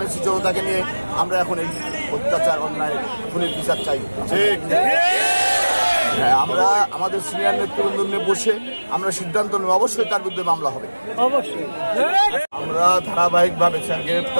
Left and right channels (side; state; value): both; inverted; correlation -1.00